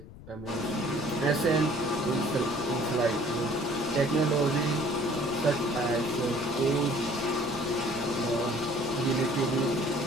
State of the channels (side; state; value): left; noise; rumble, 16 dB below the sound